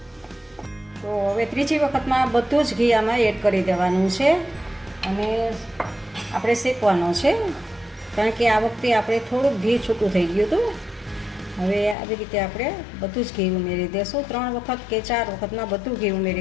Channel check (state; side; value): drops out; right; at 12.0 s